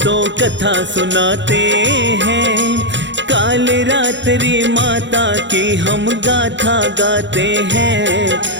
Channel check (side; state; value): left; late; 0.53 ms